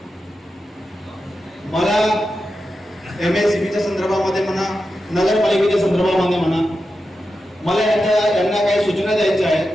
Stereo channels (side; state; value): both; normal; correlation 0.90